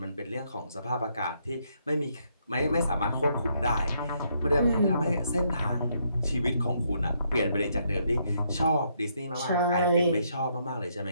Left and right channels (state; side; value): inverted; both; correlation -0.74